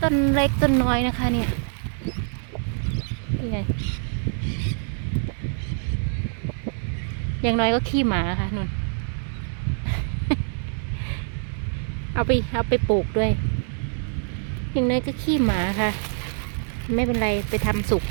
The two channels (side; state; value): left; silent; digital silence